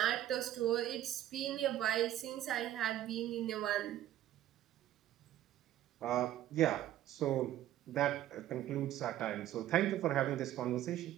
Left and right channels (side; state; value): left; quieter; 12.8 dB